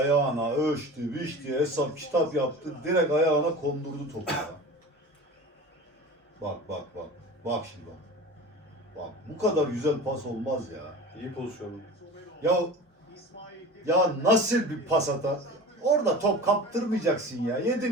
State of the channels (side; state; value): both; normal; correlation 0.35